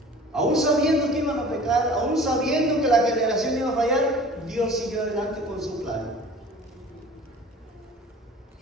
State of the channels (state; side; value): normal; both; correlation 0.45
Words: Aún sabiendo que iban a pecar, aún sabiendo que la generación iba a fallar, Dios siguió adelante con su plan.